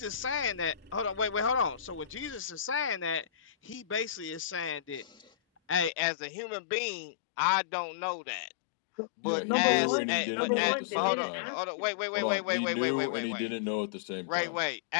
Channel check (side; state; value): right; drops out; at 5.9 s